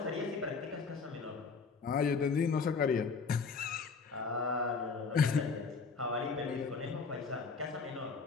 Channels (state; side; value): quieter; right; 5.0 dB